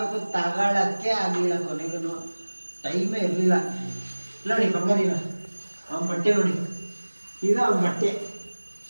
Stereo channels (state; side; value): inverted; both; correlation -1.00